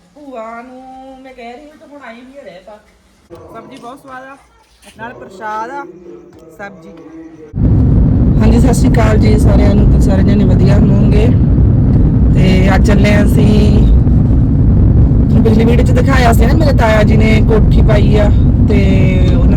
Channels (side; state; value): both; identical; correlation 1.00